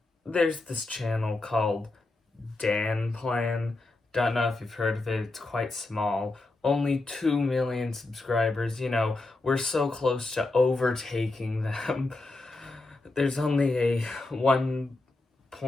there's this channel called Danplan. Don't know if you've heard of it, it's quite small. Only 2 million subscribers, you know, we're so close to overtaking them. There's only a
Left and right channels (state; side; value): quieter; right; 3.1 dB